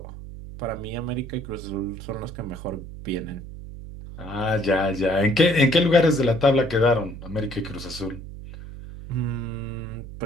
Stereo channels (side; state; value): right; noise; hum, 12 dB below the sound